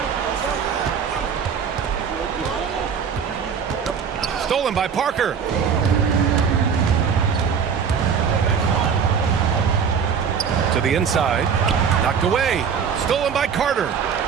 Stolen by Parker. To the inside. Knocked away. Stolen by Carter.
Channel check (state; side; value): quieter; left; 6.8 dB